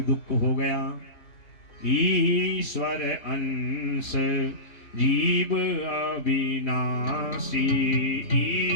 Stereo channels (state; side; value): late; right; 4.0 ms